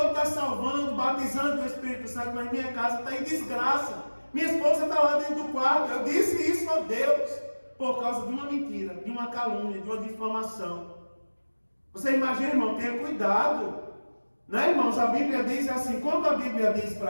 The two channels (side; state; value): both; inverted; correlation -1.00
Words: está salvando, batizando o Espírito Santo, mas minha casa está em desgraça. Minha esposa está lá dentro do quarto. Eu disse isso a Deus por causa de uma mentira, de uma calúnia, de uma difamação. Você imagina, irmão, tenha cuidado. Né, irmãos? A Bíblia diz assim, quando a Bíblia diz